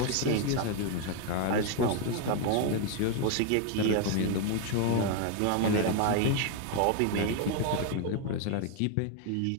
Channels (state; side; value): different; both; correlation 0.01